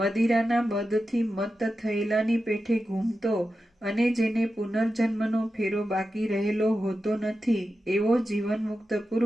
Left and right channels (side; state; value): both; normal; correlation 0.91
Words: મદથી મત્ત થયેલાની પેઠે ઘૂમતો અને જેને પુનર્જન્મનો ફેરો બાકી રહેલો હોતો નથી એવો જીવનમુક્ત